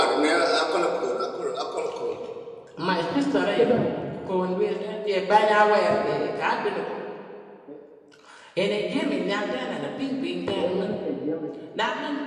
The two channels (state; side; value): identical; both; correlation 1.00